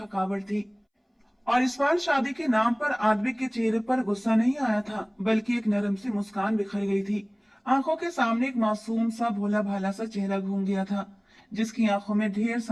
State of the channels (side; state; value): both; identical; correlation 1.00